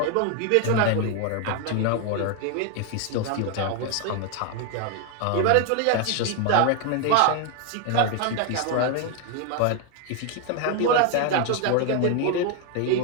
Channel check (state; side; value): different; both; correlation 0.01